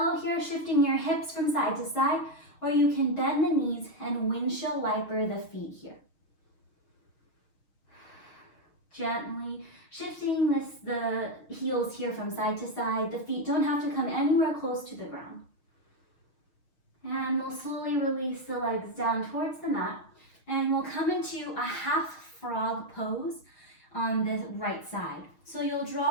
here, shifting your hips from side to side, or you can bend the knees and windshield wiper the feet here. Gently shifting the heels here from side to side. The feet don't have to come anywhere close to the ground. And we'll slowly release the legs down towards the mat. And we'll come into a half frog pose on the right side. So you'll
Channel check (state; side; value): late; right; 6.4 ms